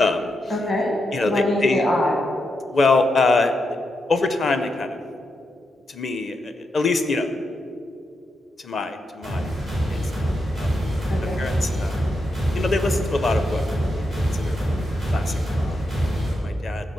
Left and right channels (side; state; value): both; normal; correlation 0.85